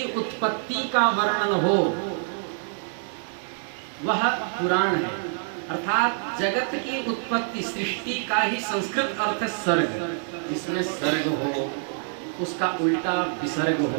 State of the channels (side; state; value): left; silent; 60 dB below the other